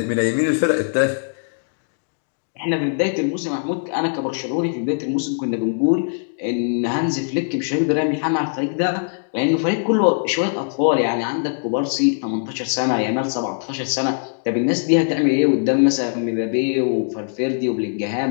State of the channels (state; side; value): silent; right; digital silence